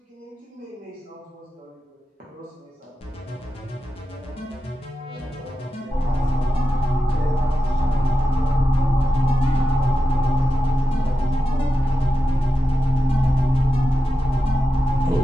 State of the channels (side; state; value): both; normal; correlation 0.91